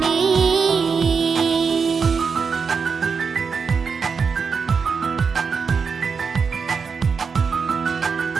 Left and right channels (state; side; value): quieter; left; 5.6 dB